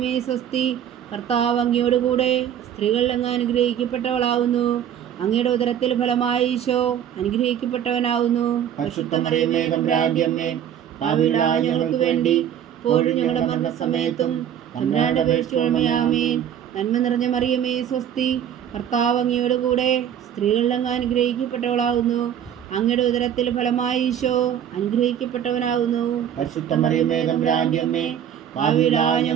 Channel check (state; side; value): quieter; left; 9.6 dB